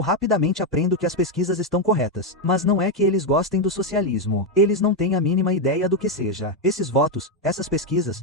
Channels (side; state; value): both; normal; correlation 0.05